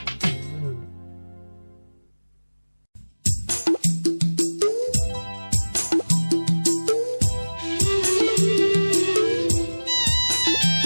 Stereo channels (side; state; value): both; inverted; correlation -1.00